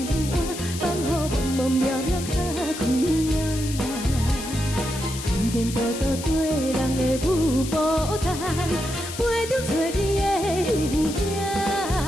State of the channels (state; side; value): noise; left; hiss, 10 dB below the sound